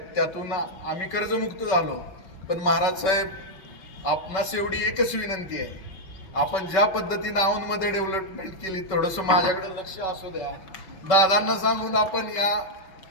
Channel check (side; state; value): right; late; 5.2 ms